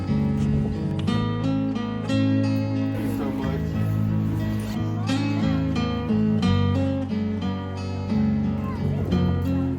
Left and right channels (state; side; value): identical; both; correlation 1.00